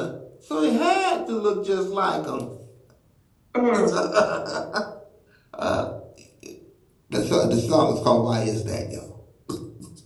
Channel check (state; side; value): identical; both; correlation 1.00